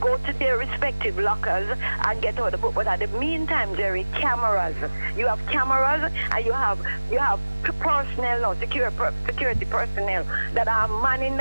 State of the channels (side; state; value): both; inverted; correlation -1.00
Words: to their respective lockers and get out the book. But at the meantime, Jerry, cameras. You have cameras, and you have personnel, security personnel that are manning